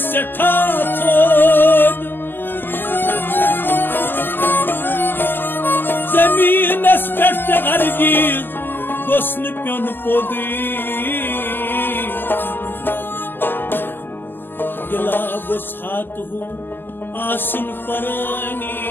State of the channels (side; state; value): right; late; 0.093 ms